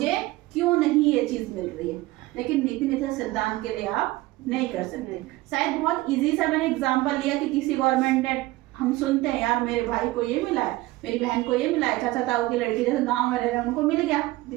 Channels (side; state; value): left; quieter; 18.7 dB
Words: क्यों नहीं ये चीज मिल रही है। लेकिन नीति निर्देशक सिद्धांत के लिए आप नहीं कर सकते। शायद बहुत इजी सा मैंने एग्जांपल लिया कि किसी गवर्नमेंट ने, हम सुनते हैं यार मेरे भाई को ये मिला है, मेरी बहन को ये मिला है, चाचा ताऊ की लड़की जैसे गांव में रह रहे हैं उनको मिल गया,